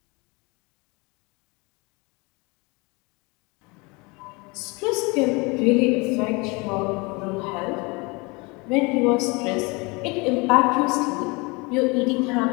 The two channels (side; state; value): right; quieter; 27.2 dB